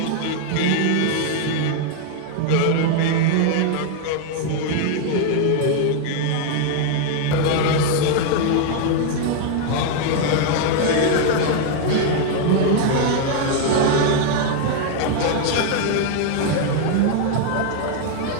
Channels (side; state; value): both; different; correlation 0.00